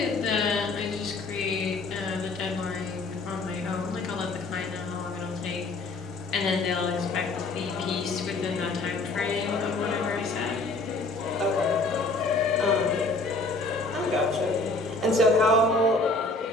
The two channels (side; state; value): right; quieter; 3.2 dB